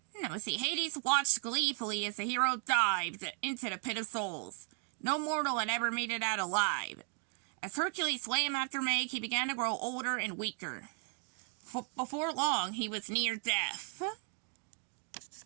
Hades watched gleefully as the hero dived into the Pit of Souls. No mortal had ever made it out alive. As Hercules swam after Meg, he began to grow older and weaker. Before long, he was near death.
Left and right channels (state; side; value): quieter; left; 39.7 dB